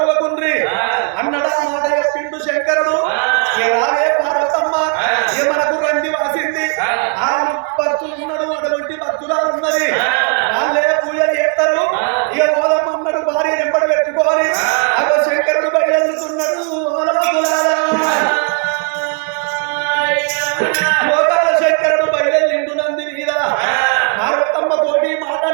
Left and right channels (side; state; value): left; quieter; 39.0 dB